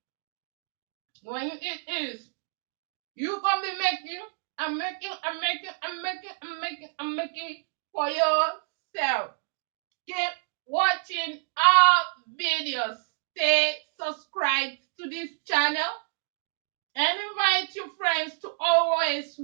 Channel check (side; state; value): left; silent; digital silence